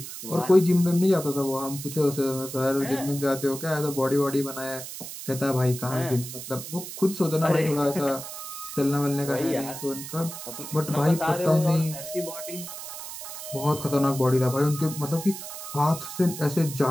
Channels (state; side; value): noise; right; hiss, 10 dB below the sound